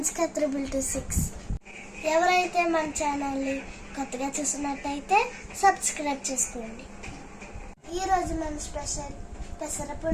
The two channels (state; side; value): identical; both; correlation 1.00